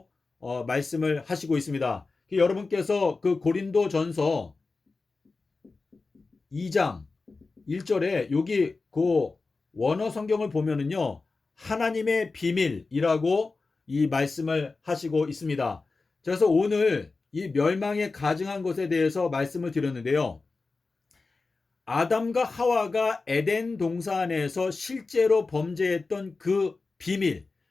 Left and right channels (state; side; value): quieter; right; 3.9 dB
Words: 말씀을 하시고 있습니다. 여러분께서 그 고린도전서 2장 1절에 여기 그 원어 성경을 보면은요, 하나님의 비밀이라고 이 말씀을 하시고 있습니다. 그래서 오늘 이 멸망에 가증한 것에 대해서 말씀을 드렸는데요. 아담과 하와가 에덴 동산에서 실제로 범죄했던 그 비밀,